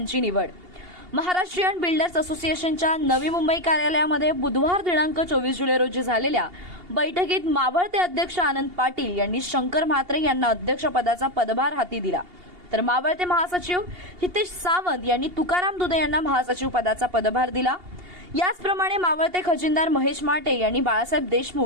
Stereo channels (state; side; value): late; left; 2.8 ms